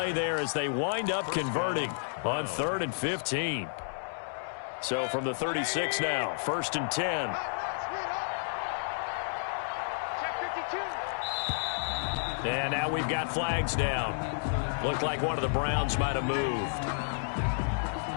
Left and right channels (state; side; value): silent; right; digital silence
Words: there as they wind up converting on 3rd and 15. So from the 36 now, 1st and 10. And now we've got flags down. Looked like one of the Browns might have moved.